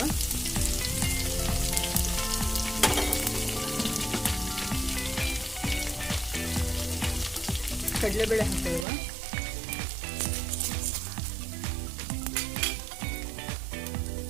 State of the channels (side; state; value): left; drops out; at 8.8 s